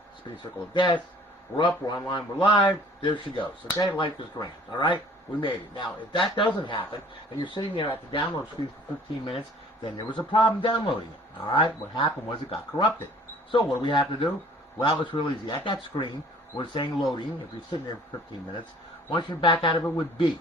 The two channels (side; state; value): both; normal; correlation 0.53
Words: Spinning circle of death. We're up, we're online, we're live. There she goes. Okay, life is grand. Alright? We made it. Now, if that doesn't happen, and you're sitting there at the download screen for 15 minutes, then there was a problem downloading it. Alright? What happened was it got corrupted. So, what do we have to do? Well, it's real easy. At that screen, we're saying loading. If you're sitting there for 15 minutes, once you're back out of it with B.